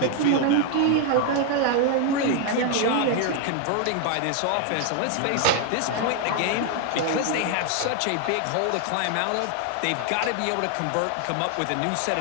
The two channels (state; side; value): different; both; correlation 0.01